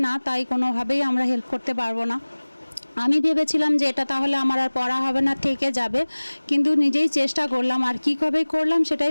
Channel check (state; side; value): inverted; both; correlation -1.00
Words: না, তাই কোনোভাবেই আমরা হেল্প করতে পারবো না। আমি ভেবেছিলাম যে এটা তাহলে আমার আর পড়া হবে না, থেকে যাবে। কিন্তু নিজেই চেষ্টা করলাম, আর কীভাবে করলাম